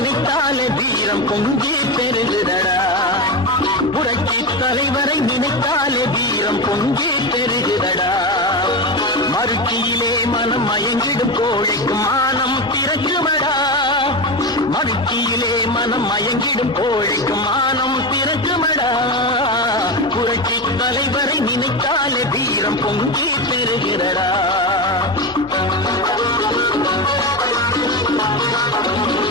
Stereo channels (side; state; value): both; normal; correlation 0.18